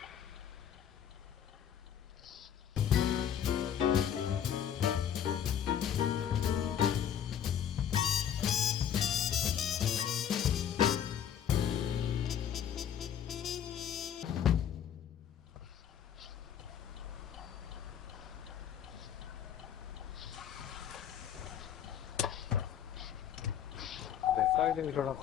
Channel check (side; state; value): right; quieter; 9.3 dB